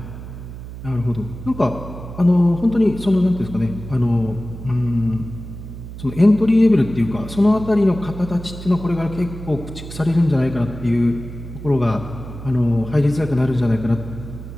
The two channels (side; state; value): right; noise; hum, 12 dB below the sound